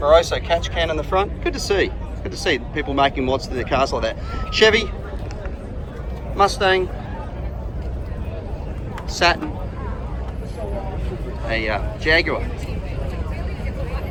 catch can in the front. Good to see. Good to see people making mods to their cars like that. Chevy, Mustang, Saturn, a Jaguar,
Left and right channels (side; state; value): both; identical; correlation 1.00